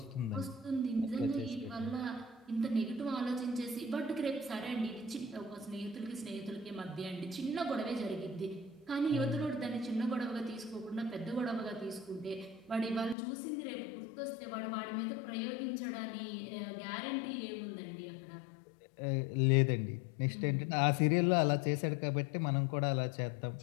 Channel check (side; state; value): right; drops out; at 13.2 s